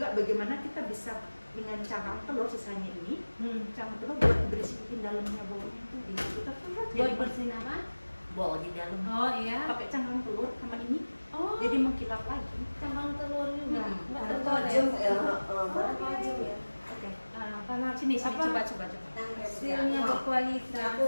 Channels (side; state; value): both; inverted; correlation -1.00